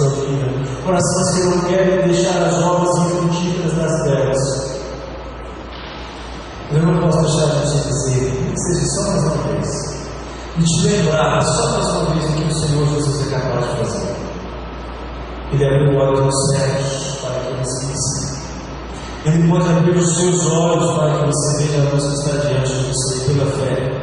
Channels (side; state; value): both; identical; correlation 1.00